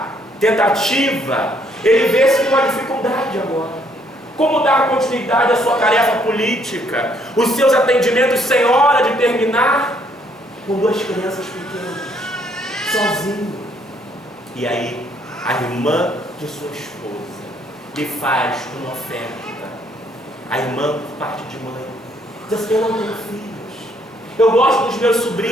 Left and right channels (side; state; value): both; normal; correlation 0.68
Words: tentativa, ele vê-se numa dificuldade agora. Como dar continuidade à sua tarefa política, os seus atendimentos sem hora de terminar, com 2 crianças pequenas, sozinho. E aí, a irmã de sua esposa lhe faz uma oferta. A irmã, por parte de mãe, diz assim: eu não tenho filhos, eu gosto dos meus